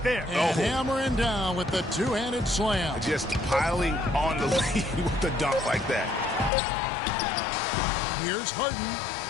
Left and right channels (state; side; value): drops out; right; at 6.5 s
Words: there. And hammering down with the two-handed slam. Just piling on the lead with the dunk like that. Here's Harden.